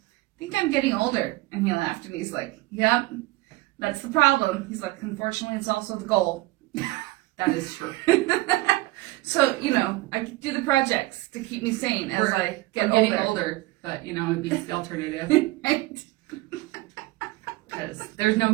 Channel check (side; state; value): left; quieter; 19.8 dB